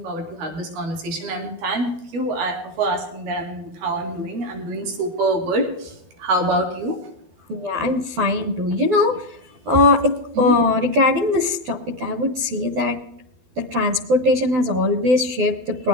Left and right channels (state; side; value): late; left; 12 ms